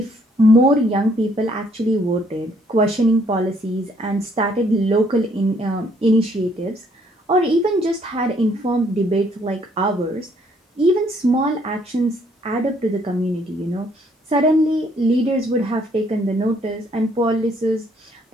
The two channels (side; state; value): both; normal; correlation 0.66